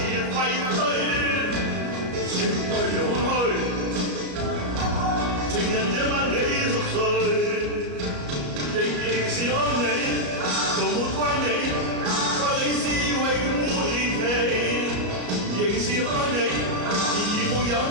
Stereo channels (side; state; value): left; late; 33 ms